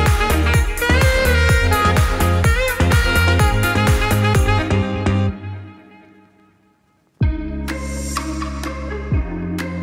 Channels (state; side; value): identical; both; correlation 1.00